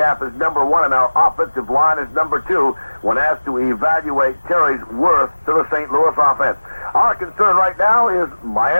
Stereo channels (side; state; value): both; inverted; correlation -1.00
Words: is number 1 and our offensive line is number 2 when asked to evaluate Terry's worth to the St. Louis offense. Our concern right now is